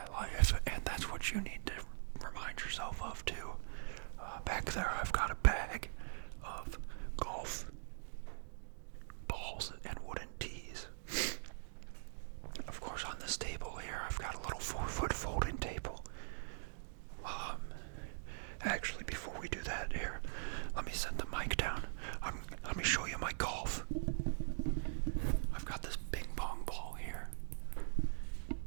life, and that's what you need to remind yourself of too. Back there, I've got a bag of golf balls and wooden tees. Of course, on this table here, I've got a little 4-foot folding table. Actually, before we do that here, let me set the mic down. Let me show you my golf. I've got this ping pong ball here.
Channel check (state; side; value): silent; left; digital silence